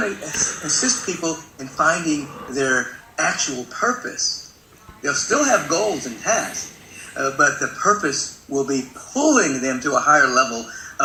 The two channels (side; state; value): both; identical; correlation 1.00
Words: to assist people in finding their actual purpose. They'll still have goals and tasks, but the purpose will be pulling them to a higher level